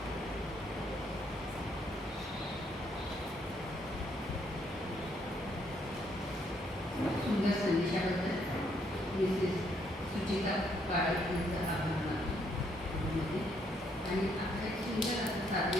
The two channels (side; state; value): both; normal; correlation 0.71